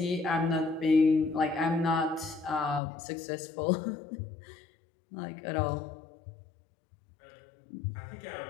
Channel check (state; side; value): drops out; right; at 2.8 s